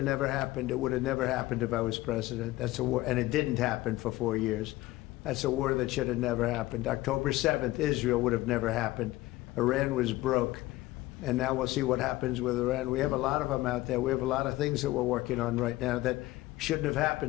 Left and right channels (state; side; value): quieter; right; 17.8 dB